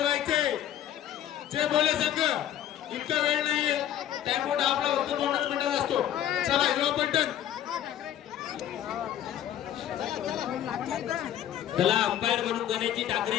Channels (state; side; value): quieter; right; 11.2 dB